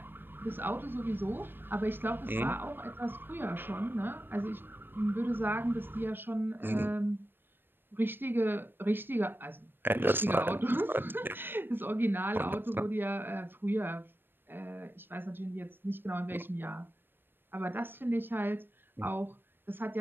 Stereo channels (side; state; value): left; late; 0.098 ms